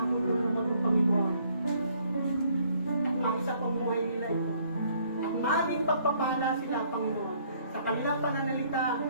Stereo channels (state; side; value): inverted; both; correlation -0.64